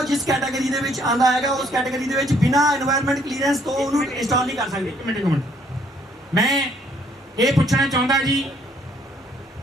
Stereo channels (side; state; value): both; normal; correlation 0.65